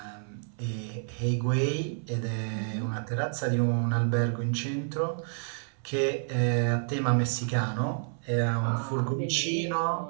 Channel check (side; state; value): left; silent; 58 dB below the other